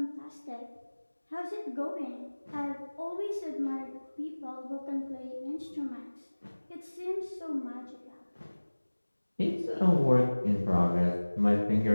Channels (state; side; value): inverted; both; correlation -1.00